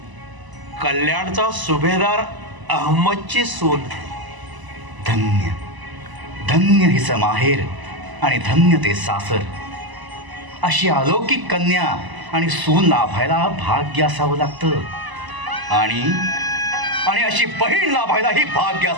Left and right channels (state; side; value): late; left; 1.0 ms